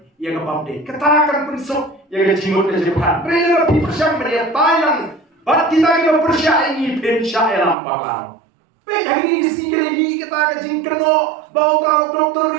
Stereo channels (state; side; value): drops out; left; at 7.8 s